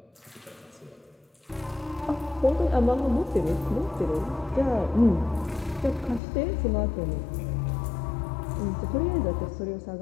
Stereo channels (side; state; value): right; drops out; at 6.2 s